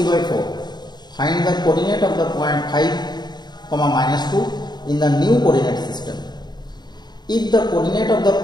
Find the coordinate of the point 5, -2 in the new coordinate system. If the coordinate of the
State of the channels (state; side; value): late; right; 0.20 ms